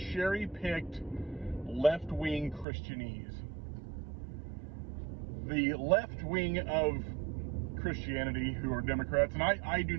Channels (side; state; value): left; drops out; at 2.7 s